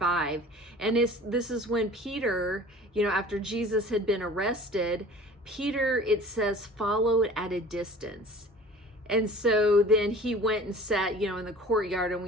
And this is when Peter, after Jesus had been arrested, Peter, it says, followed at a distance. And so then he went and sat, in the courtyard, and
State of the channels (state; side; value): normal; both; correlation 0.44